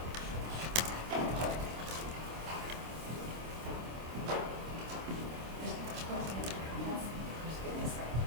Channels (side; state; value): left; late; 26 ms